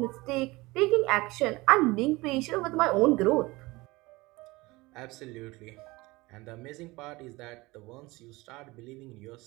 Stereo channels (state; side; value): quieter; left; 21.9 dB